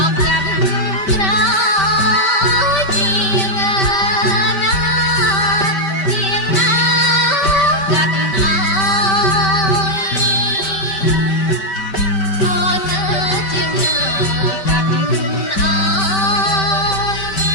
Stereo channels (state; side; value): late; right; 5.2 ms